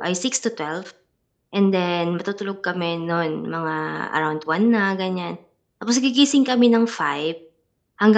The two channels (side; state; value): both; identical; correlation 1.00